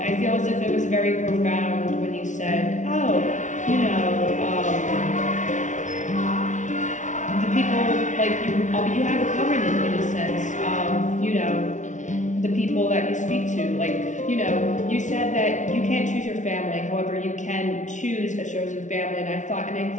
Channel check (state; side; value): late; right; 0.36 ms